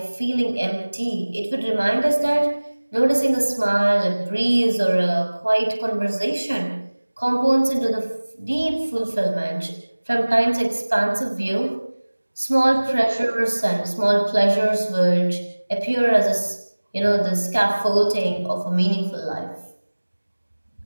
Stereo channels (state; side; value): inverted; both; correlation -1.00